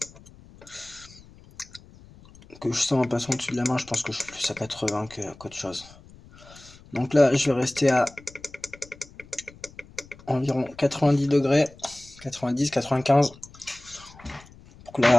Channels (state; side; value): noise; left; rumble, 22 dB below the sound